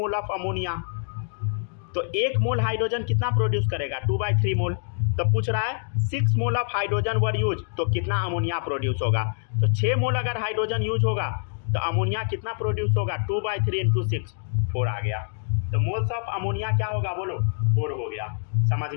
of ammonia. तो 1 मोल हाइड्रोजन कितना प्रोड्यूस करेगा? 2/3 मोल। तो पूछ रहा है 6 मोल ऑफ हाइड्रोजन वर यूज, तो कितना अमोनिया प्रोड्यूस होगा? तो 6 मोल अगर हाइड्रोजन यूज होगा तो अमोनिया कितना प्रोड्यूस होगा? 2/3 इंटू 6, 4 आ गया। तो मोल्स ऑफ अमोनिया क्या होगा बोलो? 4 हो गया। समझ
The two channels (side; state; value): right; silent; digital silence